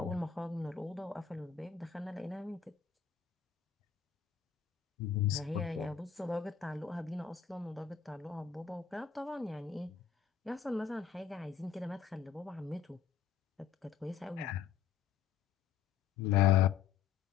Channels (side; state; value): right; quieter; 7.4 dB